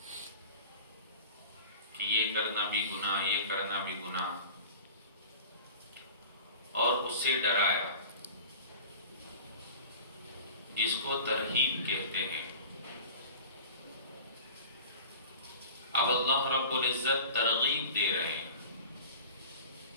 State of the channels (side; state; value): both; inverted; correlation -0.39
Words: کہ یہ کرنا بھی گناہ، یہ کرنا بھی گناہ، اور اس سے ڈرایا جس کو ترہیب کہتے ہیں. اب اللہ رب العزت ترغیب دے رہے ہیں